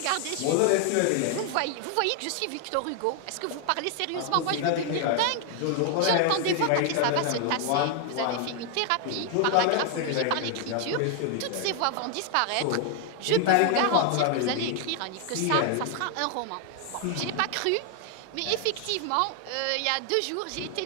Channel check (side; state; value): both; different; correlation 0.00